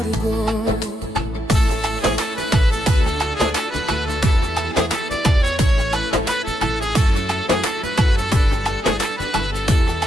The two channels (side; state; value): both; normal; correlation 0.82